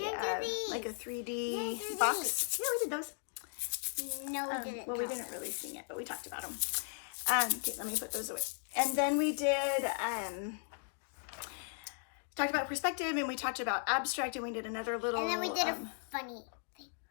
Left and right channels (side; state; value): right; silent; 53 dB below the other